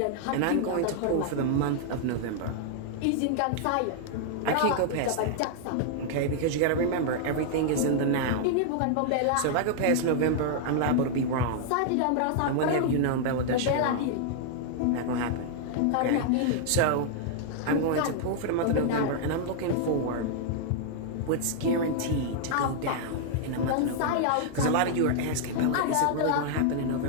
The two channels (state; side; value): different; both; correlation -0.01